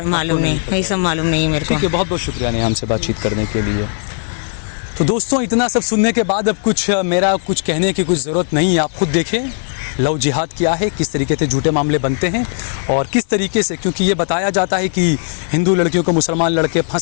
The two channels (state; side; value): silent; right; 65 dB below the other